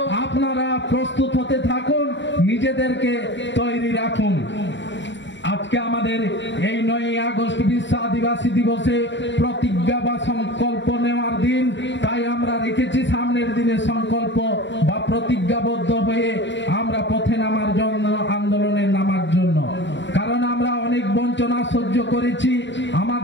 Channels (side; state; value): right; late; 0.53 ms